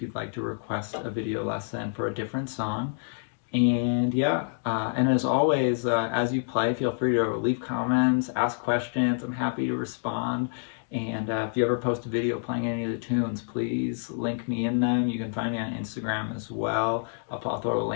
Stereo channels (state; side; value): silent; right; digital silence